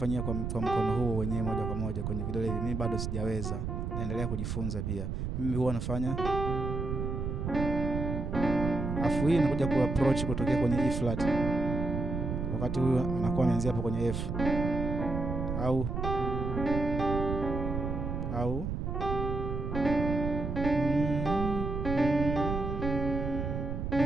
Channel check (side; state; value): right; noise; rumble, 3 dB below the sound